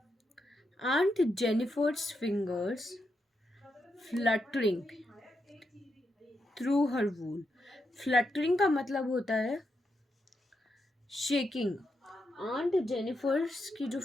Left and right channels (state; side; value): normal; both; correlation 0.84